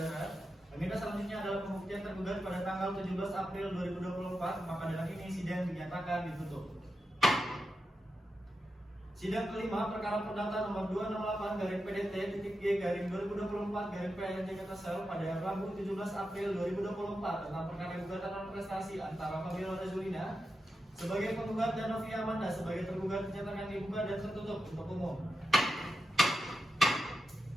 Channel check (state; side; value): normal; both; correlation 0.88